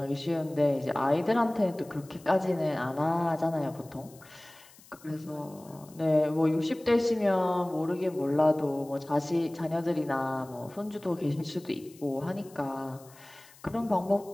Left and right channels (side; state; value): left; noise; hiss, 24 dB below the sound